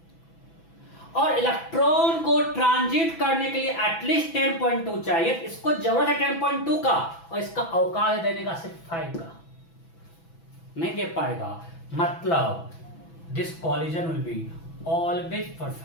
और इलेक्ट्रॉन को ट्रांजिट करने के लिए एटलीस्ट 10.2 चाहिए, इसको जरूरत है 10.2 का, और इसका अवकाश देने का सिर्फ 5 का, नहीं दे पाएगा। मतलब this collision will be always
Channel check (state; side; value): late; right; 6.0 ms